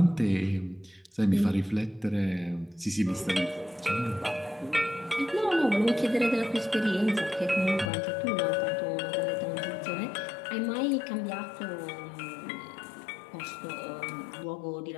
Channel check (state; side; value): drops out; right; at 7.9 s